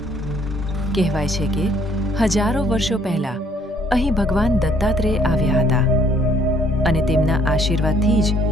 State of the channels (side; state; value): both; normal; correlation 0.63